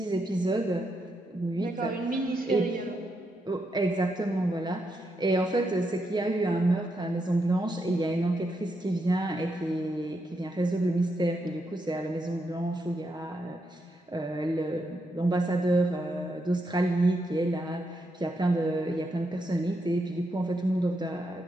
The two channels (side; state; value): both; normal; correlation 0.82